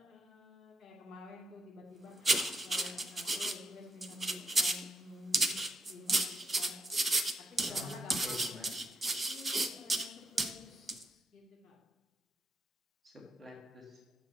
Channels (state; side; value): normal; both; correlation 0.79